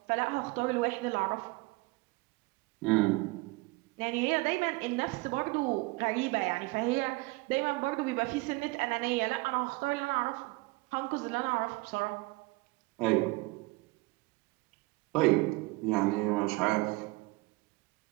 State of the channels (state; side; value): quieter; left; 23.8 dB